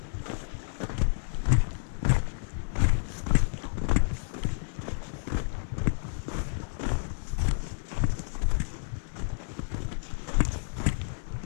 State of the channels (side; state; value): right; silent; 58 dB below the other